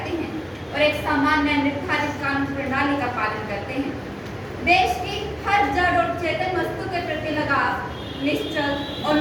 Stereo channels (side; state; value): both; identical; correlation 1.00